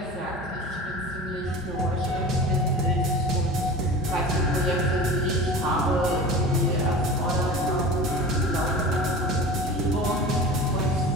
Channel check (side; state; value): both; normal; correlation 0.35